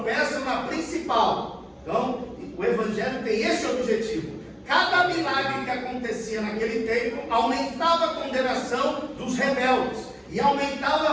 na principal. Então, o Evangelho tem esse objetivo. Cada milagre que acontecia naquele tempo aumentava a condenação dos rebeldes e aumentava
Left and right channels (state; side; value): identical; both; correlation 1.00